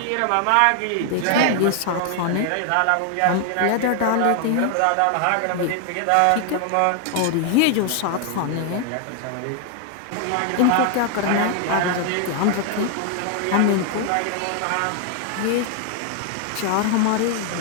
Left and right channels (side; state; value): both; different; correlation 0.00